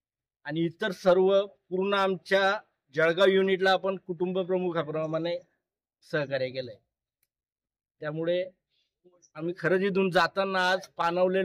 आणि इतर सर्व पूर्ण आमच्या जळगाव युनिटला आपण कुटुंब प्रमुखाप्रमाणे सहकार्य केलंय. त्यामुळे आम्ही खरंच इथून जाताना आज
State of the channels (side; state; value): both; identical; correlation 1.00